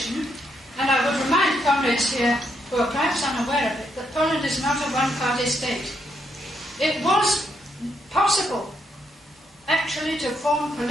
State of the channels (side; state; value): both; normal; correlation 0.77